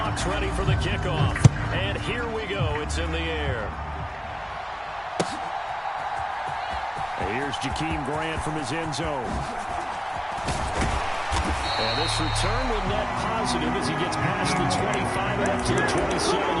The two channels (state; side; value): identical; both; correlation 1.00